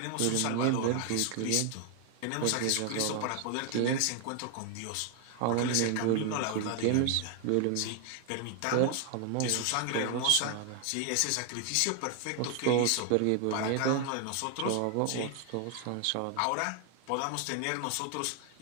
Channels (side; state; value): both; different; correlation 0.00